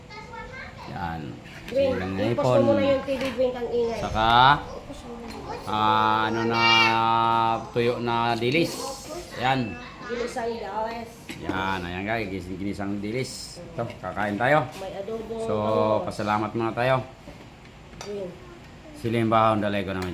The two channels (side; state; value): both; identical; correlation 1.00